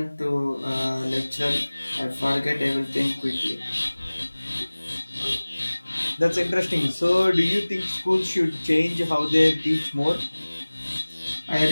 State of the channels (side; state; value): both; inverted; correlation -1.00